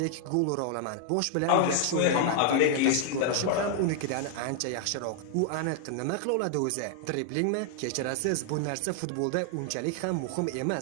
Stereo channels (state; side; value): different; both; correlation 0.00